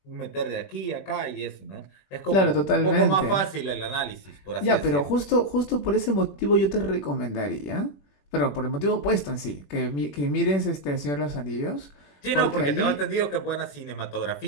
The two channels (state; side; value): late; right; 21 ms